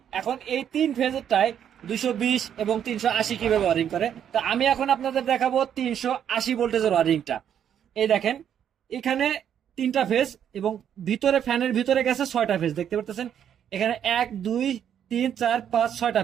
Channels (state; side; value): quieter; left; 9.2 dB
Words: এখন এই 3 ফেজেরটায় 220 এবং 380 কিভাবে ওয়ারিং করে। তো আমি এখন আপনাদের দেখাবো 380 ভোল্টেজের ওয়ারিংটা। এই দেখেন, এখানে 3টা ফেজ এবং ভিতরে ফ্যানের ভিতরে গেছে 6টা ফেজ, দেখতে পাচ্ছেন। এখানে 1 2 3 4 5 6টা